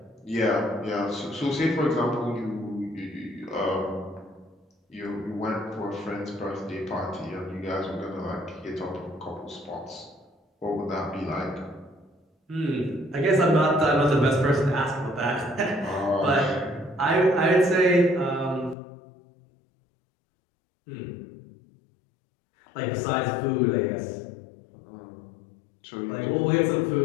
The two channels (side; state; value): right; drops out; at 18.8 s